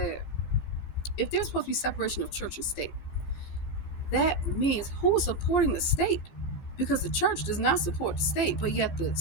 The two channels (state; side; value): late; right; 14 ms